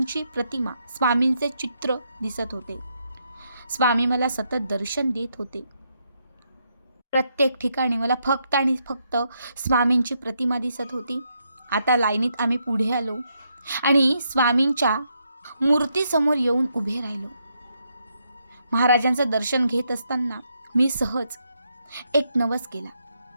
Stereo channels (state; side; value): inverted; both; correlation -0.78